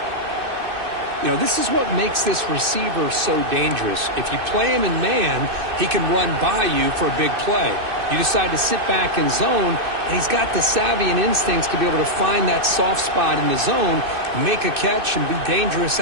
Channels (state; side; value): late; left; 2.6 ms